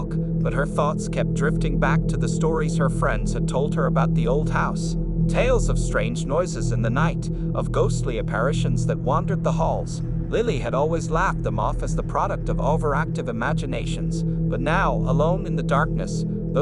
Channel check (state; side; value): identical; both; correlation 1.00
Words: but her thoughts kept drifting back to the stories her friends had told her about the old house. Tales of strange noises in the night, of ghostly apparitions that wandered the halls. Lily had always laughed them off as the product of overactive imaginations, but now, alone in the darkness,